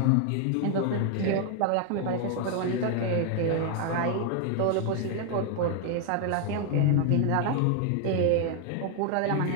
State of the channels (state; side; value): different; both; correlation 0.00